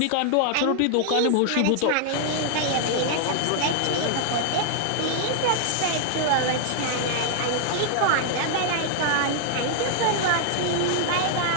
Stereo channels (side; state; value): both; different; correlation 0.00